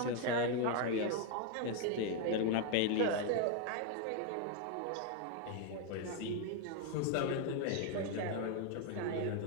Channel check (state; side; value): different; both; correlation 0.01